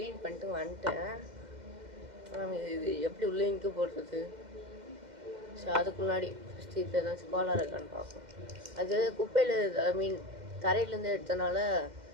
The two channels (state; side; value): late; left; 2.1 ms